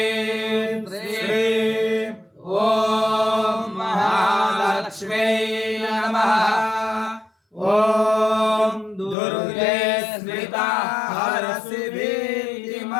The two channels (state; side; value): drops out; right; at 9.2 s